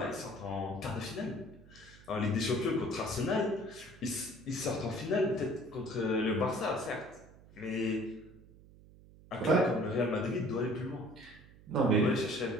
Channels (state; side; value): noise; right; hum, 22 dB below the sound